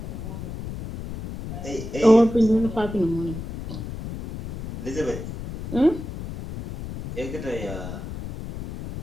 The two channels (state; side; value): noise; left; rumble, 9 dB below the sound